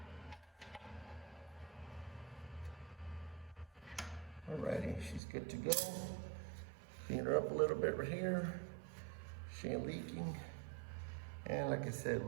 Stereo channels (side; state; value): left; drops out; at 5.2 s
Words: Alrighty, she's good to go. Clean her up a little bit right here. She ain't leaking. And like I said,